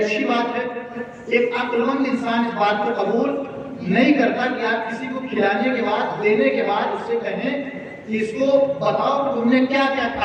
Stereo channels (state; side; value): identical; both; correlation 1.00